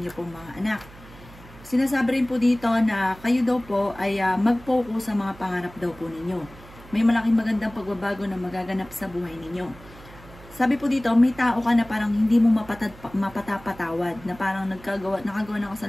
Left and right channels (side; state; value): right; noise; hum, 20 dB below the sound